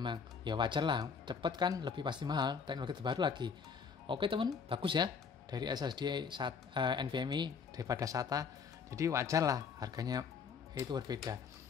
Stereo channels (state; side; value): quieter; right; 6.0 dB